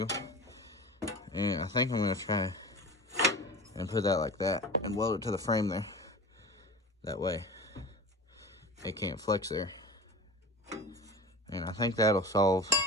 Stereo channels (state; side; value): normal; both; correlation 0.33